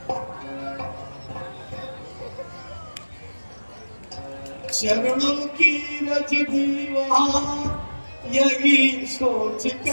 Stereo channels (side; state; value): both; inverted; correlation -1.00